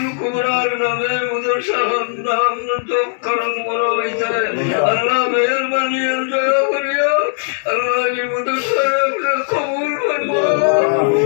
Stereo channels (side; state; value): right; silent; digital silence